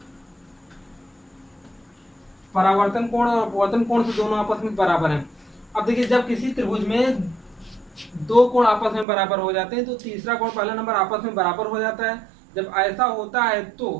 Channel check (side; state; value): left; drops out; at 9.1 s